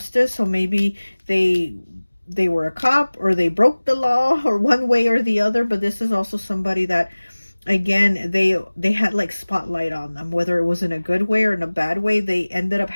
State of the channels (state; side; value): inverted; both; correlation -1.00